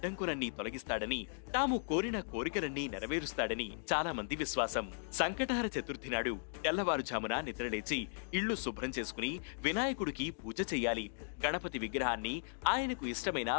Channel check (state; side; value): silent; right; digital silence